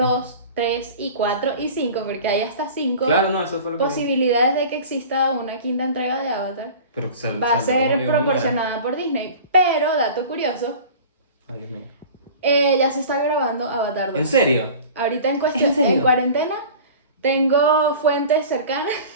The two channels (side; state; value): both; inverted; correlation -0.40